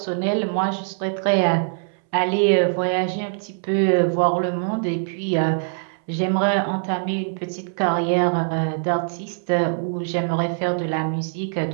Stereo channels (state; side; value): silent; left; 63 dB below the other